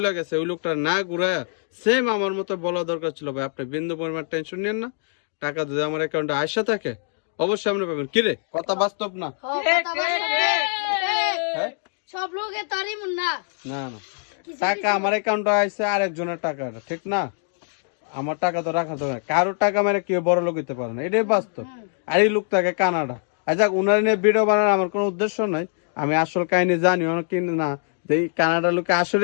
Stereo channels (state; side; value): silent; right; 63 dB below the other